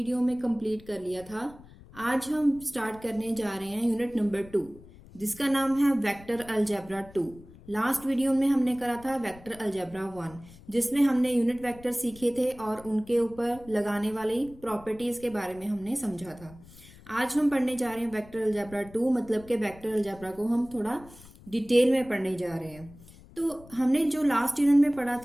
में कंप्लीट कर लिया था। आज हम स्टार्ट करने जा रहे हैं यूनिट नंबर 2 जिसका नाम है वेक्टर अलजेब्रा 2। लास्ट वीडियो में हमने करा था वेक्टर अलजेब्रा 1 जिसमें हमने यूनिट वेक्टर सीखे थे और उनके ऊपर लगाने वाली प्रॉपर्टीज के बारे में हमने समझा था। आज हम पढ़ने जा रहे हैं वेक्टर अलजेब्रा 2, मतलब कि वेक्टर अलजेब्रा को हम थोड़ा डिटेल में पढ़ने जा रहे हैं। तो हमने जो लास्ट यूनिट में पढ़ा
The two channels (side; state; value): left; noise; rumble, 21 dB below the sound